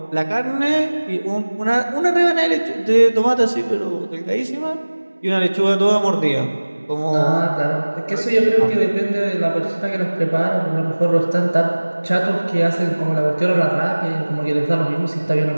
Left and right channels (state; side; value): inverted; both; correlation -1.00